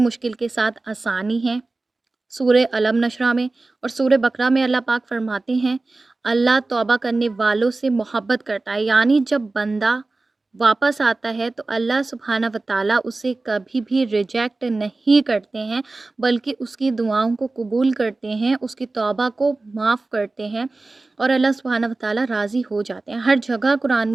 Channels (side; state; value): left; quieter; 3.3 dB